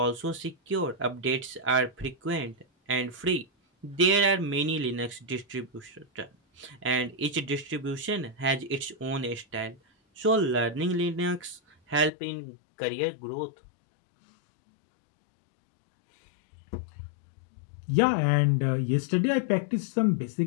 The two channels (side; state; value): right; drops out; at 12.1 s